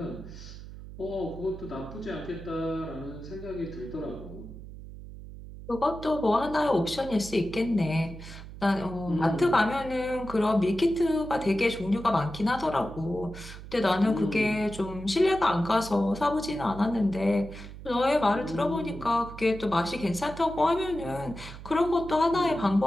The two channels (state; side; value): noise; right; hum, 13 dB below the sound